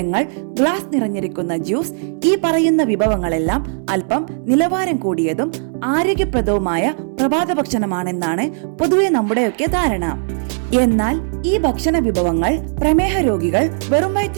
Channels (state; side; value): silent; left; digital silence